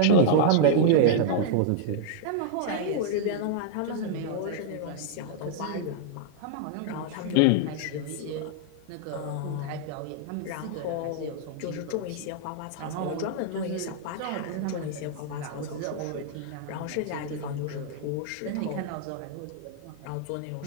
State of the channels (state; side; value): different; both; correlation -0.01